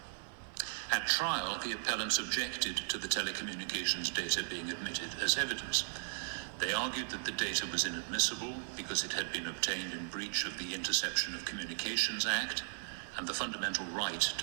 At trial, the appellants objected to the telecommunications data being admitted as evidence. They argued that the data was inadmissible because it had been obtained in breach of the Interception of Communications Act and the fundamental right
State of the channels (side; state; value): left; silent; 53 dB below the other